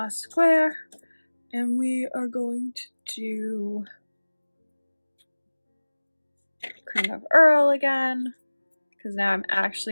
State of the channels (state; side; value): inverted; both; correlation -1.00